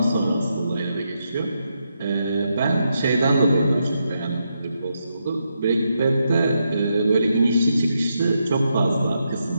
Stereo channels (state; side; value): inverted; both; correlation -0.82